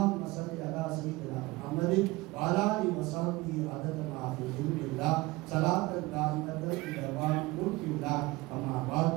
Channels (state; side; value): quieter; left; 21.3 dB